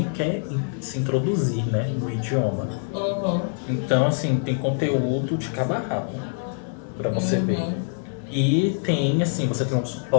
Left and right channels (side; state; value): right; silent; 61 dB below the other